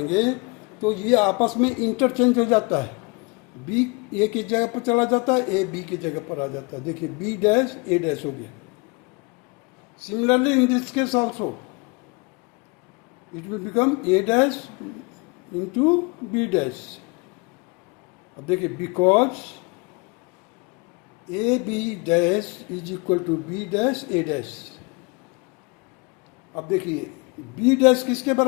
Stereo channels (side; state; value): right; quieter; 29.2 dB